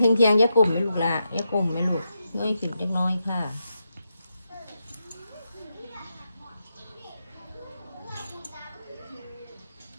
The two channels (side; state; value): both; inverted; correlation -0.86